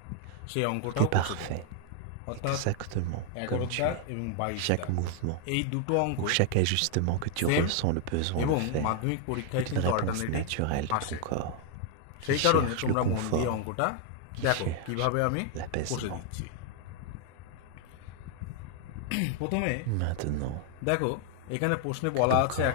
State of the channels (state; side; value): different; both; correlation 0.00